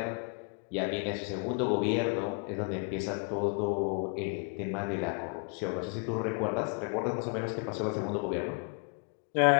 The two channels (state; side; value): quieter; right; 39.9 dB